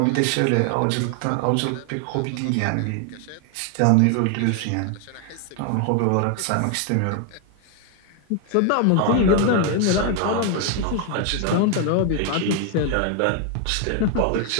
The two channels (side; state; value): both; different; correlation 0.01